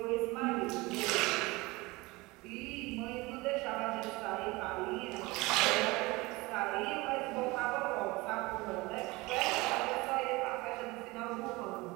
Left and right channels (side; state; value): left; quieter; 22.8 dB